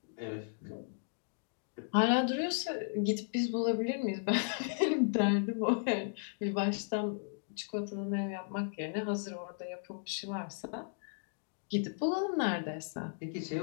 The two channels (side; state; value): right; silent; digital silence